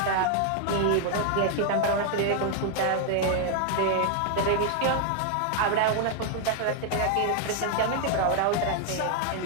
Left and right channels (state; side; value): different; both; correlation 0.00